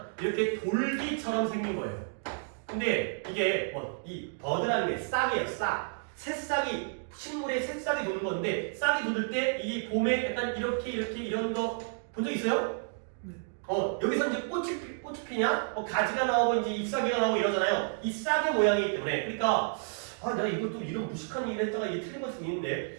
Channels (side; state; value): left; silent; digital silence